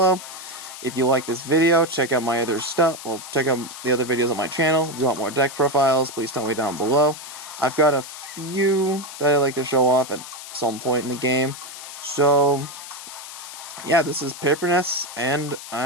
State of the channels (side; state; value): left; noise; hiss, 12 dB below the sound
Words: If you like this video, check out my other stuff. Well, check out the other videos on my channel. If you want more deck profiles, please tell me down below. I've got a few that I like to show off at some point in the game. So yeah, this is PaperNess, and